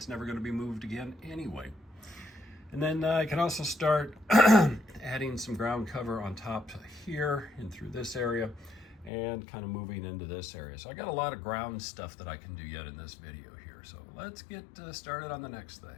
never going to be moved again anyway. And then I can also start adding some ground cover on top here and through this area and kind of moving into this area. So I got a lot of ground stuff that I can do yet in this video here. So let's get started on the next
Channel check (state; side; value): drops out; right; at 9.1 s